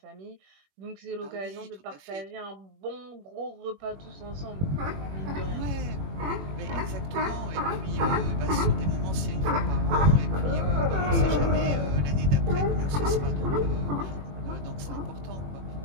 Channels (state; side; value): late; left; 21 ms